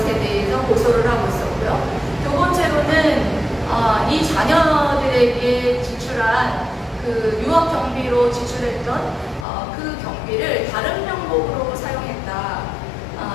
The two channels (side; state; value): right; drops out; at 9.5 s